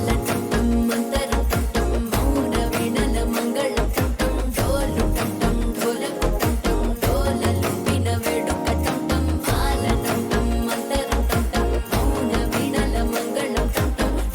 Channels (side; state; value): both; identical; correlation 1.00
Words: టంటం మంతరం టంటం మౌన వీణల మంగళం టంటం డోలు టంటం ఢోలకు టంటం డోలలు విన వేడుక టంటం మాల టంటం మంతరం టంటం మౌన వీణల మంగళం టంటం